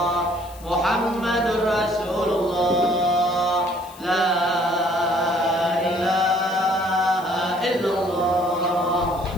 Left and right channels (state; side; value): noise; left; hiss, 21 dB below the sound